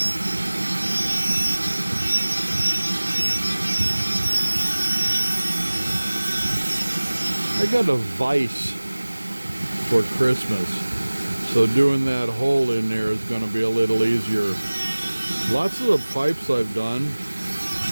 I got a vise for Christmas, so doing that hole in there is going to be a little easier. Lots of the pipes I've done,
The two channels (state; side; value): inverted; both; correlation -1.00